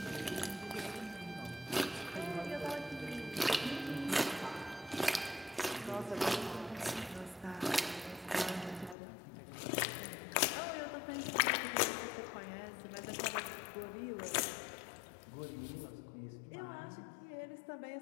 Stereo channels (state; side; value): drops out; right; at 9.0 s